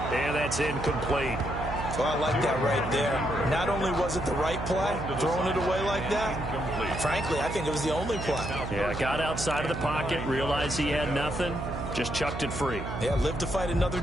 And that's incomplete. Well, I like that right there. Not only was it the right play, throwing it away like that, frankly, I think it was the only play. Yeah, got outside of the pocket, realized he had nothing, just chucked it free. Yeah, live to fight another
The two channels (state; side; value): noise; right; hum, 6 dB below the sound